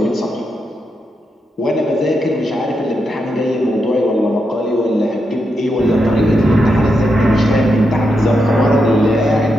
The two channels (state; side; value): normal; both; correlation 0.84